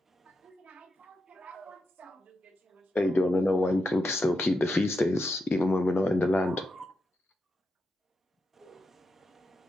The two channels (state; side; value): normal; both; correlation 0.86